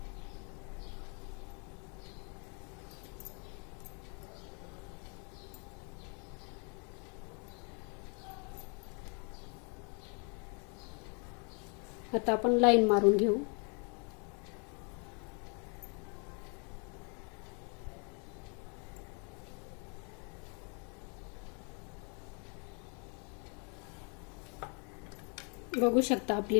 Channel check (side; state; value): right; quieter; 36.7 dB